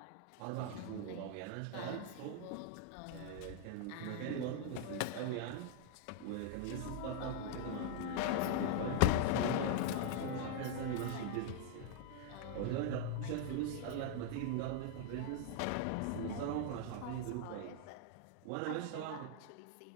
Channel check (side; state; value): both; different; correlation 0.00